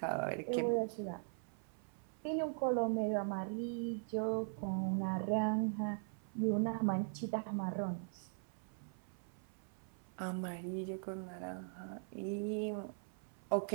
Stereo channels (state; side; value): silent; left; 51 dB below the other